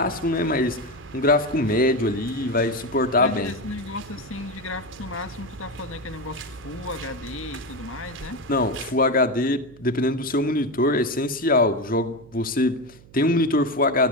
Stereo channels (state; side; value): noise; right; hum, 23 dB below the sound